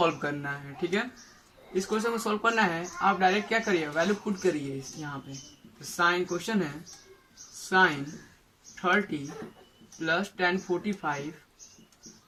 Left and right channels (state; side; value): identical; both; correlation 1.00